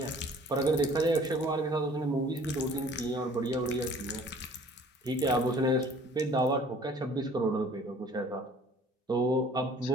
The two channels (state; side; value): normal; both; correlation 0.52